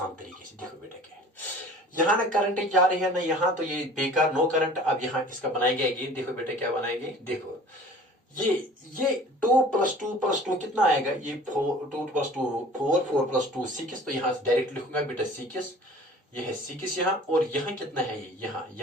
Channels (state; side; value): normal; both; correlation 0.46